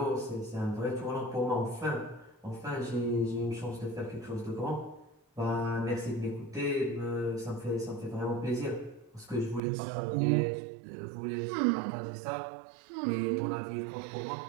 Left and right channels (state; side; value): drops out; left; at 9.6 s